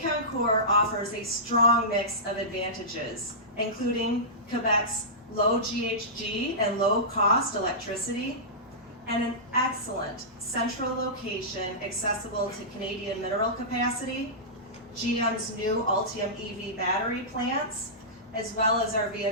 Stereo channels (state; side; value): normal; both; correlation -0.18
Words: offers a strong mix of advantages, including Quebec's low GHG and low-cost electricity, and an excellent central location accessible to Canadian mineral capacity, GM's new Ultium EV battery plants, as well as our